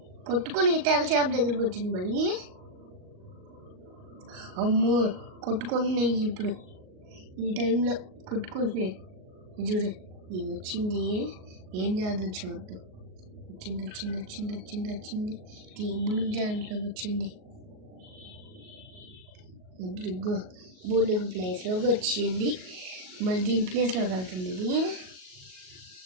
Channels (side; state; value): left; late; 38 ms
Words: కొట్టుకుని తెల్ల చేప దగ్గరికి వచ్చింది మళ్ళీ. అమ్మో కొట్టుకుంటున్నాయి ఇప్పుడు, ఈ టైంలో కొట్టుకుంటున్నాయి. చూడు ఇది వచ్చింది, ఏం చేద్దాం చూద్దాం. వచ్చింది వచ్చింది వచ్చింది వచ్చింది వచ్చింది బులుగు దాంట్లోకి వచ్చింది. ఇప్పుడు బులుగు ప్లేస్లోకి వచ్చింది, మళ్ళీ దీని ప్లేస్లోకి వెళ్తుంది ఇది.